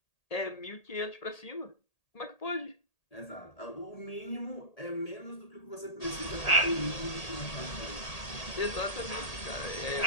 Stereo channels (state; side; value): late; right; 1.8 ms